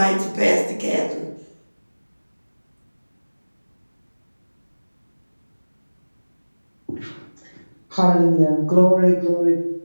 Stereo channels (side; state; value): both; inverted; correlation -1.00